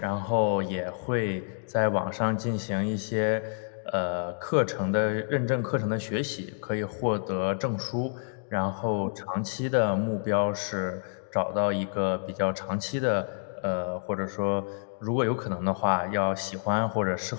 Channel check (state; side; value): silent; right; digital silence